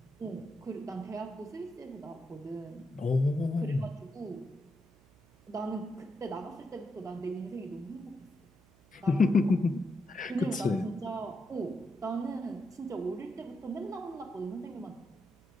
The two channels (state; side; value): noise; right; hum, 27 dB below the sound